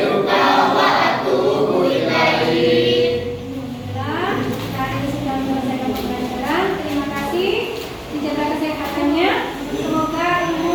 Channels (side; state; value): both; identical; correlation 1.00